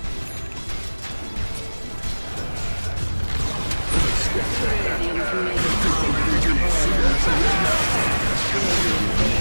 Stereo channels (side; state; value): both; inverted; correlation -1.00